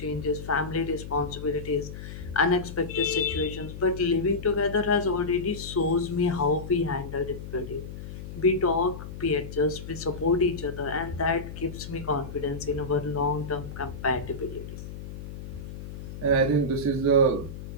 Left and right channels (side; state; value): left; noise; hum, 10 dB below the sound